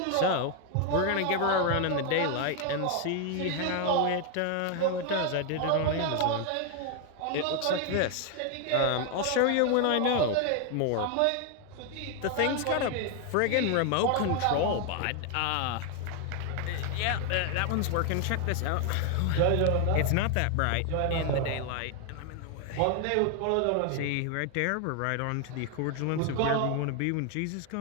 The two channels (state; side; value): different; both; correlation 0.01